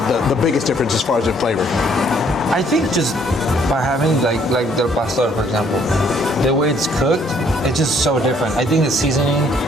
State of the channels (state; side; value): normal; both; correlation 0.64